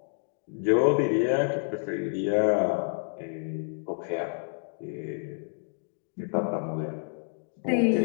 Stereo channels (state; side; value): silent; right; digital silence